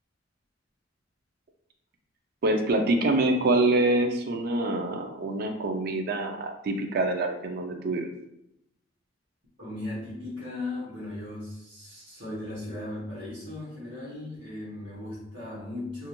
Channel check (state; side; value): normal; both; correlation 0.22